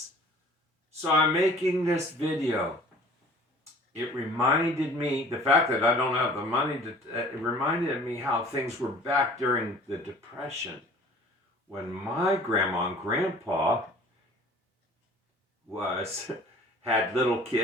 So I'm making this video. It reminded me, the fact that I don't have the money it reminded me how things were back during the Depression when my grandma and grandpa was had little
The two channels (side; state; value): both; normal; correlation 0.48